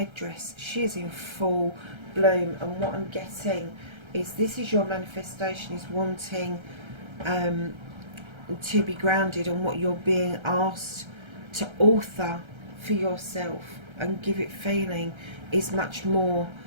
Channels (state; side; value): late; left; 1.3 ms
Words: she is in full bloom, and what I'm getting is this is your manifestation, is wanting to be grounded on what you're being asked to author for yourself and give it feeling is much more